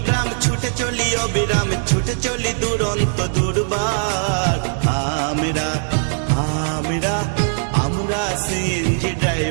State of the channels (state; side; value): silent; left; digital silence